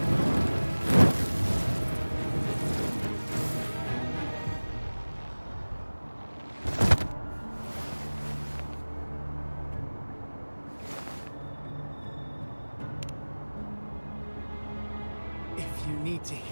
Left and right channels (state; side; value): inverted; both; correlation -1.00